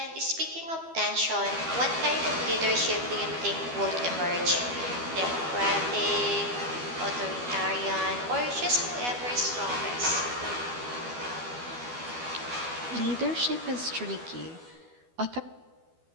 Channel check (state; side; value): late; left; 12 ms